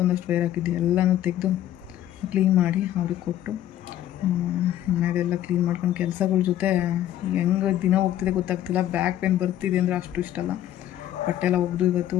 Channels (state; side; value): quieter; right; 12.3 dB